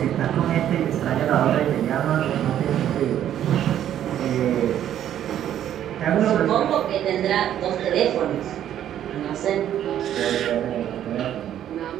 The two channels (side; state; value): left; quieter; 10.9 dB